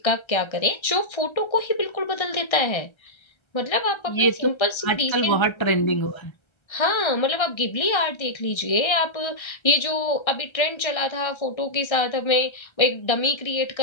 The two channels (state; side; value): late; right; 1.3 ms